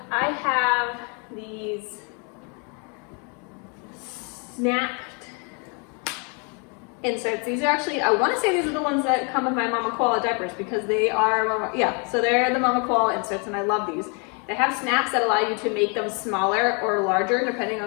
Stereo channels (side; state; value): right; quieter; 35.8 dB